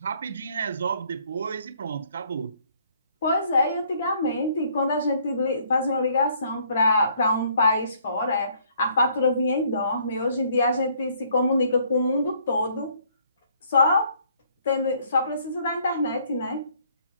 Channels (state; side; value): inverted; both; correlation -0.63